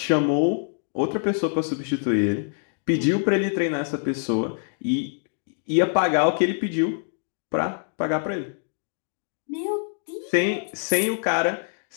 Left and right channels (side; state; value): right; silent; digital silence